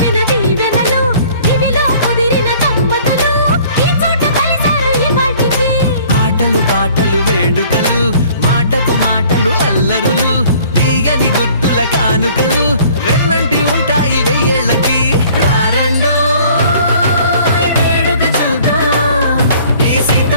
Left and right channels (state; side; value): inverted; both; correlation -0.53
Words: దీవెనలు, ఇవిలో కుదిరిన దంపతులు ఈ చోట కలిసారు ఈ వాటికి. ఆటలు పాటలు వేడుకలు, మాటకు మాటలు అల్లరులు, తీయని గుట్టుల కానుకలు వెన్నంటి ఉంటాయి వెయ్యేళ్ళకి. రారండో వేడుక చూద్దాం, ఈ